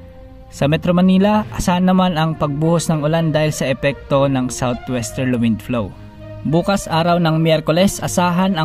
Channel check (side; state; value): both; identical; correlation 1.00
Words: Sa Metro Manila, asahan naman ang pagbuhos ng ulan dahil sa epekto ng southwesterly wind flow. Bukas araw ng Miyerkules, asahan